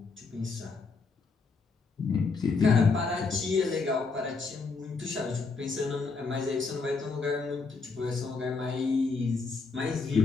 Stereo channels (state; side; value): quieter; right; 4.4 dB